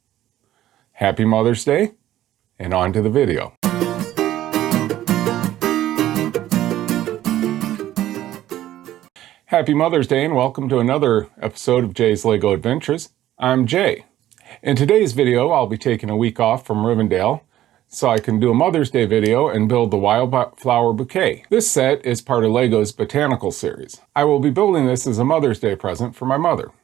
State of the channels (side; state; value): left; quieter; 13.4 dB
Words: Happy Mother's Day, and on to the video. Happy Mother's Day, and welcome to another episode of Jay's LEGO Adventures. I'm Jay. In today's video, I'll be taking a week off from Rivendell so I can do a Mother's Day video and build the Wildflower Bouquet. This set is part of LEGO's Botanical series. I will be building this as a Mother's Day present for my mother.